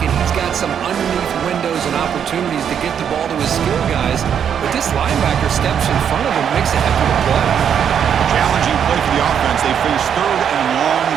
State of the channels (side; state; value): left; quieter; 8.3 dB